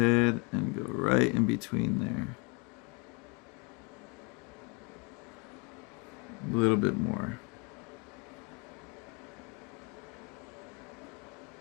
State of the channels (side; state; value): right; quieter; 31.1 dB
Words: and go right in between there. A little bit more.